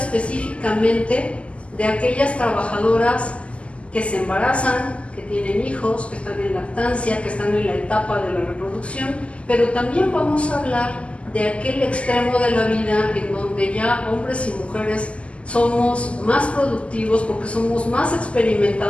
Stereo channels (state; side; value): late; right; 0.058 ms